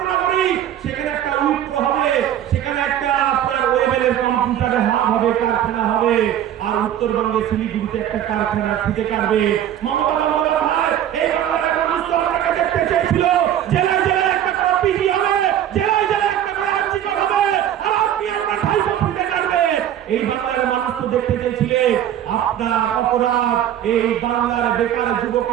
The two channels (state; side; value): quieter; left; 10.9 dB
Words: সেখানে একটা উইপ্রো হবে, সেখানে একটা আপনার ওয়েবেলের কম্পিউটারে হাব হবে, কারখানা হবে। আর উত্তরবঙ্গে শিলিগুড়িতে একটা কারখানা ফিতে কাটবে। মমতা বন্দ্যোপাধ্যায়, এই বাংলার মানুষ তো আপনাকে দেখতে চেয়েছিল জেলায় জেলায় একটা করে পিজি হবে, জেলায় জেলায় একটা করে আর্চিকর হবে, আর আপনি আপনার ভাইপো ফিতে কাটবে। এই বাংলার মানুষ তো দেখতে চেয়েছিলেন আপনার অপরাধ এই বাংলার বেকার